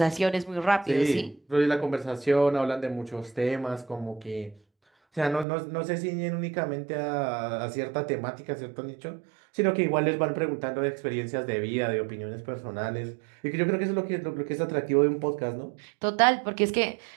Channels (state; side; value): drops out; left; at 5.5 s